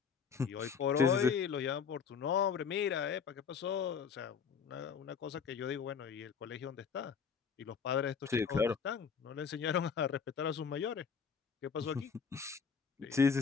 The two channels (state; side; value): quieter; right; 6.3 dB